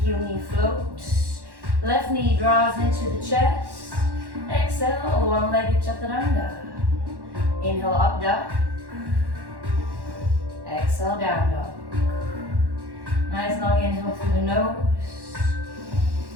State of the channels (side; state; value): left; late; 1.1 ms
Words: heel, knee float. Left knee draws into the chest. Exhale, one-legged chaturanga. Inhale, up dog. Exhale, down dog. Nice long inhale through the nose.